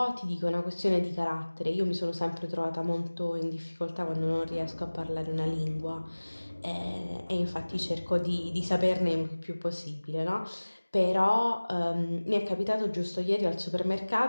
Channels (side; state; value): both; inverted; correlation -1.00